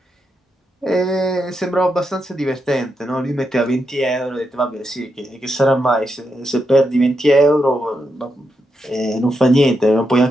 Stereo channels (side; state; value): both; normal; correlation 0.84